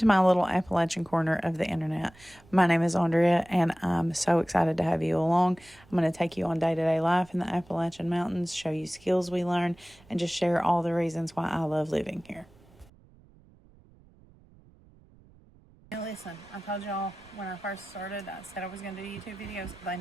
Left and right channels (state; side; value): noise; right; rumble, 27 dB below the sound